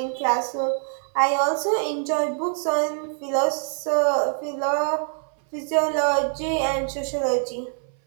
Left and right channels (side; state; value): left; silent; 60 dB below the other